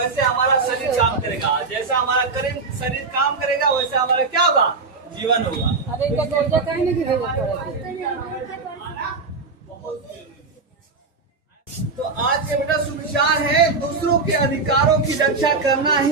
हमारा शरीर काम करेगा, जैसा हमारा शरीर काम करेगा वैसे हमारा क्या होगा, जीवन होगा। तो आज के बेटा सुविचार है, दूसरों के अधिकारों की रक्षा करना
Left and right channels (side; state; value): left; quieter; 4.2 dB